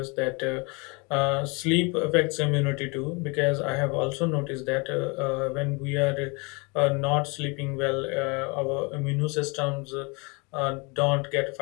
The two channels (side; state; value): right; quieter; 29.7 dB